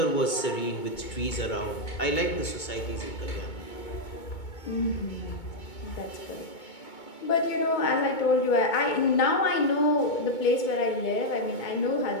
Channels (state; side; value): late; right; 2.2 ms